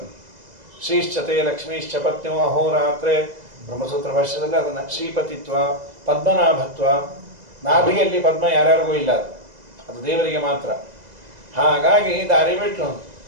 ಶ್ರೀಶ್ಚತೆ ಲಕ್ಷ್ಮೀಶ್ಚ ಪತ್ನಿಯೋ ಅಹೋರಾತ್ರೆ ಬ್ರಹ್ಮಸೂತ್ರ ಭಾಷ್ಯದಲ್ಲಿ ಅದನ್ನು ಶ್ರೀಪತಿತ್ವ, ಪದ್ಮನಾಭತ್ವ. ನಾಭಿಯಲ್ಲಿ ಪದ್ಮ ಯಾರ್ಯಾರಿಗೂ ಇಲ್ಲ, ಅದು ದೇವರಿಗೆ ಮಾತ್ರ. ಹಾಗಾಗಿ ದಾರಿ ಬಿಟ್ಟು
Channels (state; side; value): late; left; 2.0 ms